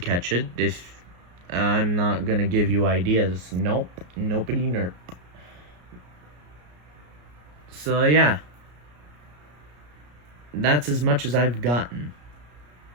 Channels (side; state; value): left; late; 33 ms